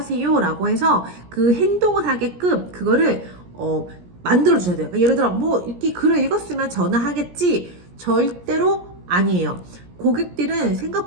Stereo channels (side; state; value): left; late; 17 ms